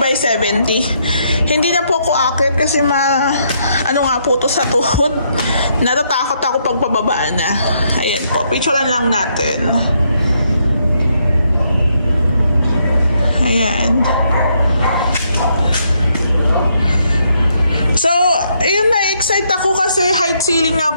70. Hindi na po ako akit kasi ano nga po to sa tuhod. Natatakot ako pag pababa na. Ayan po, picturean lang natin. Ayan. So, ayun, na-excite ako kasi height ceiling nga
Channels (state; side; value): inverted; both; correlation -0.74